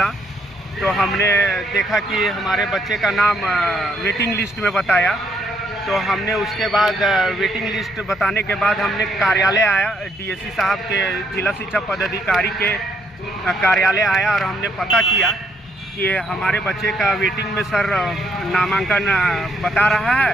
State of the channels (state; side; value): normal; both; correlation 0.72